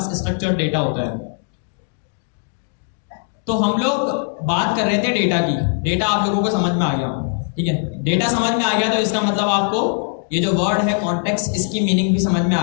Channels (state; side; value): silent; right; 58 dB below the other